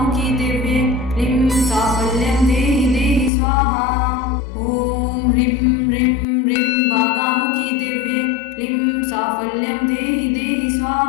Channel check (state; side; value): drops out; right; at 3.3 s